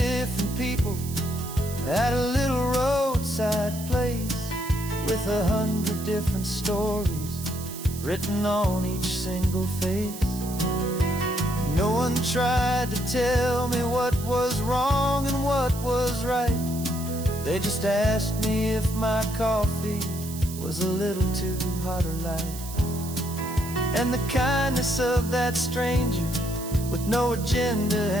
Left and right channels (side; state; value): right; noise; hiss, 12 dB below the sound